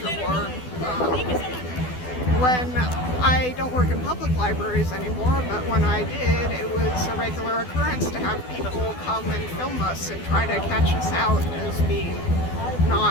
war. When I don't work in public libraries anymore, but when I did, it was a regular occurrence to have people come and film us and try to catch us out as being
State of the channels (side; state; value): right; late; 12 ms